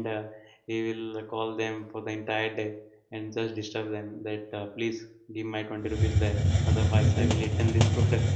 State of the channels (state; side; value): identical; both; correlation 1.00